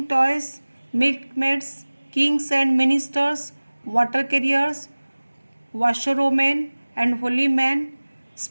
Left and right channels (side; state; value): both; inverted; correlation -1.00